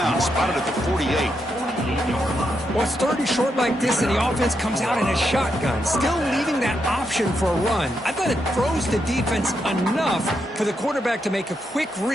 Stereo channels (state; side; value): normal; both; correlation 0.82